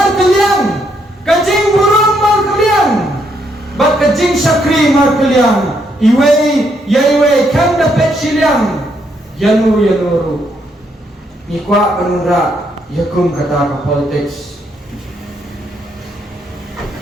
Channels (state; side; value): normal; both; correlation 0.74